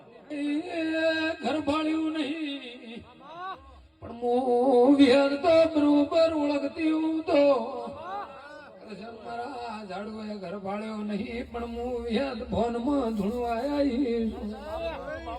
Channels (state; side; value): identical; both; correlation 1.00